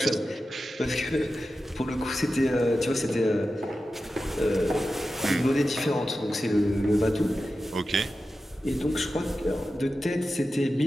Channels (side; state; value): both; normal; correlation 0.92